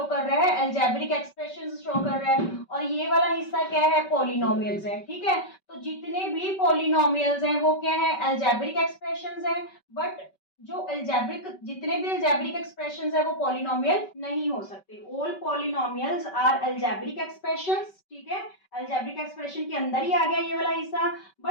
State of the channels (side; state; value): right; late; 5.2 ms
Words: कर रहा है, अलजेब्रिक एक्सप्रेशंस शो कर रहा है, और ये वाला हिस्सा क्या है, पॉलिनोमियल्स है, ठीक है। तो जितने भी पॉलिनोमियल्स हैं वो क्या है, अलजेब्रिक एक्सप्रेशंस हैं, बट जो अलजेब्रिक, जितने भी अलजेब्रिक एक्सप्रेशंस है वो पॉलिनोमियल नहीं हो सकते। All polynomials are algebraic expressions, ठीक है। अलजेब्रिक एक्सप्रेशन के अंदर ही आ गया ये वाला हिस्सा,